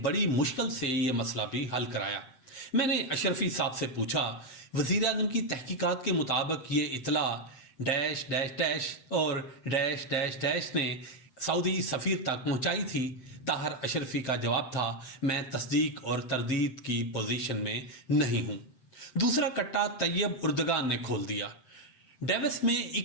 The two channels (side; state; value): right; late; 7.7 ms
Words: بڑی مشکل سے یہ مسئلہ بھی حل کرایا۔ میں نے اشرفی صاحب سے پوچھا، وزیر اعظم کی تحقیقات کے مطابق یہ اطلاع ڈیش ڈیش ڈیش اور ڈیش ڈیش ڈیش نے سعودی سفیر تک پہنچائی تھی؟ طاہر اشرفی کا جواب تھا، میں تصدیق اور تردید کی پوزیشن میں نہیں ہوں۔ دوسرا کٹا طیب اردگان نے کھول دیا۔ ڈیوس میں